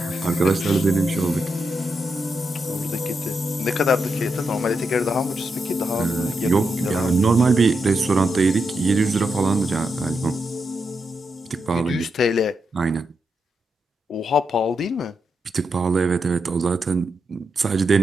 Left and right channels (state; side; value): normal; both; correlation 0.84